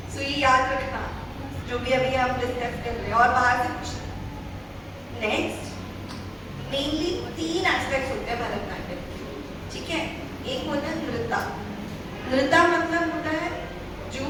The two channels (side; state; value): both; identical; correlation 1.00